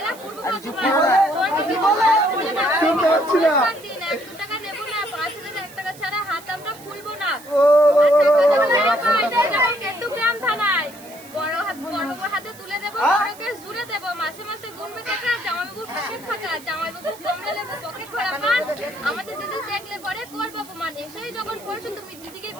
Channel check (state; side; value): noise; right; hiss, 20 dB below the sound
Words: পূর্ব টাকা নেবো না, 5,000 টাকা ছাড়া হাত আমরা খুলবো না। কেতুগ্রাম থানায় বড় হাতে তুলে দেবো, বড়কে জুড়ে দেবো, মাসে মাসে গুনবে টাকা, জামাইবাবু পকেট ফাঁকা, জামাইবাবু কমলা লেবু পকেট ভরা পান, আমাদের দিদি দেখলে পরে করবো অপমান। এসেই যখন পড়ছো তুমি দিদিকে